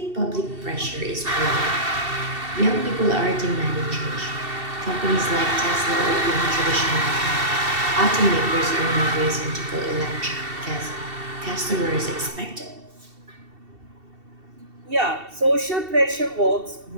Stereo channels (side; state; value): left; late; 2.7 ms